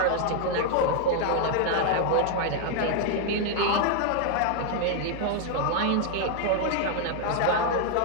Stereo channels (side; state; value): both; different; correlation 0.00